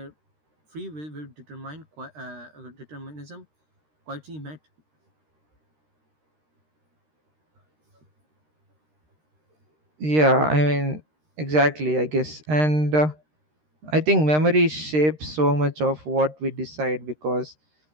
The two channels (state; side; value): late; left; 13 ms